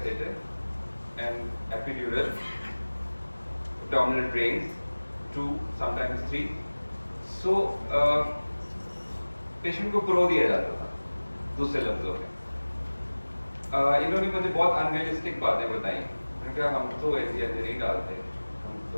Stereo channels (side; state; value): both; inverted; correlation -1.00